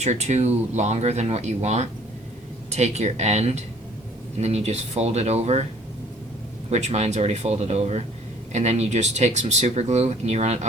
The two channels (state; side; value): normal; both; correlation 0.56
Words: or two longer than what you want. Take your end and then you just fold it over, which mine's already folded over, and then you just take some super glue and you run it